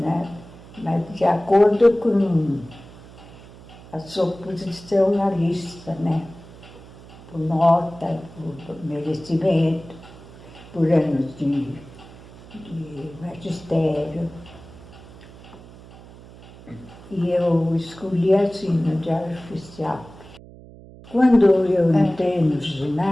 mas de acordo com a sua posição na lista, né? Por nota, por merecimento, por anos de magistério. E eu escolhi assim no Diário Oficial. Quando eu entrei no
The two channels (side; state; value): right; noise; hum, 19 dB below the sound